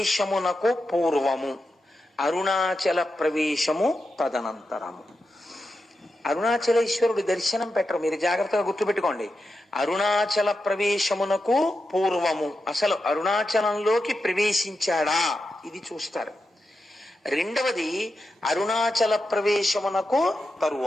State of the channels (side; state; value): both; normal; correlation 0.89